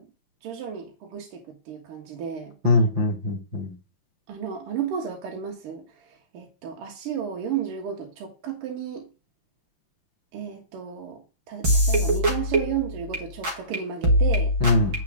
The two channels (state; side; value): late; left; 6.2 ms